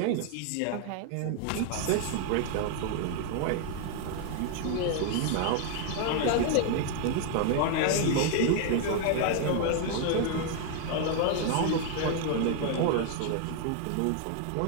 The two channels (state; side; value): different; both; correlation 0.00